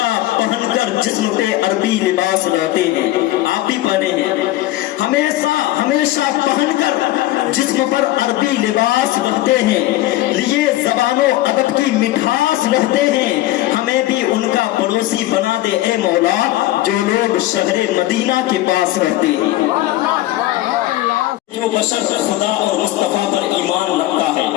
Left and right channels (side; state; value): right; quieter; 16.0 dB